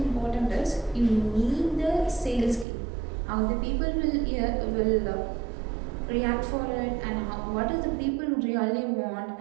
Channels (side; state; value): left; drops out; at 2.7 s